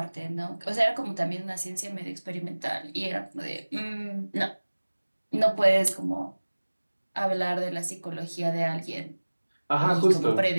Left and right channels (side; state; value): both; inverted; correlation -1.00